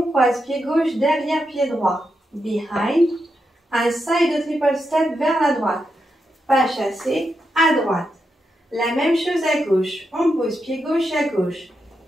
croise pied gauche derrière pied droit. Behind. Un side triple step vers la droite. Pas chassé à droite. La même chose à gauche. On pose pied gauche à gauche.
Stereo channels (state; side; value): normal; both; correlation 0.85